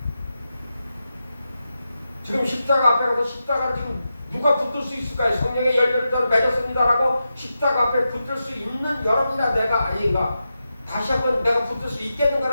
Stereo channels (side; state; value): both; inverted; correlation -0.89